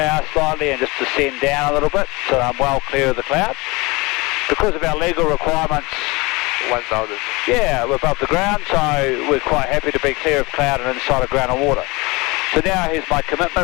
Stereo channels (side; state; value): right; quieter; 24.4 dB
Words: slightly and just descend down a little bit so I'm well clear of the cloud. Because of our legal requirements, 1,000. yeah, we're above the ground, so we're quite happy to be clear of cloud and inside of ground and water. So now here's my